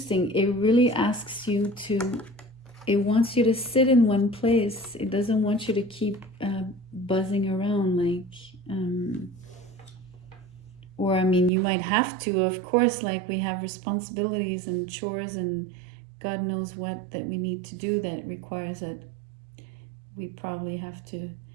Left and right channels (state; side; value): drops out; left; at 11.5 s